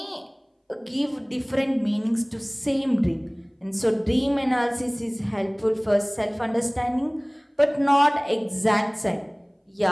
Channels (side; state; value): both; identical; correlation 1.00